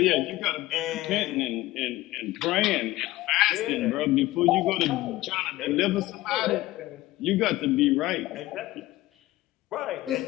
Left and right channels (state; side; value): quieter; right; 17.4 dB